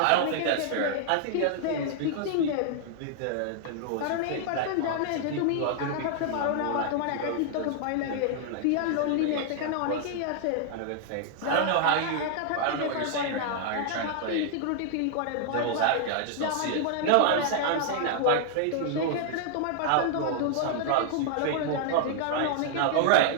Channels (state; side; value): different; both; correlation -0.01